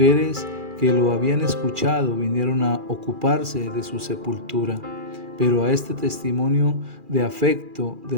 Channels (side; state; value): left; late; 2.4 ms